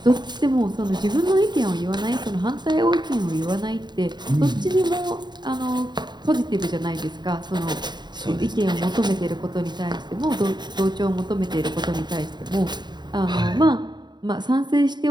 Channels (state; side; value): late; left; 0.21 ms